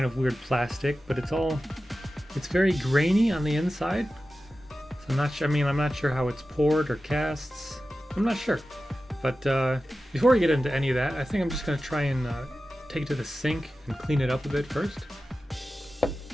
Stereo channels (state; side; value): normal; both; correlation 0.94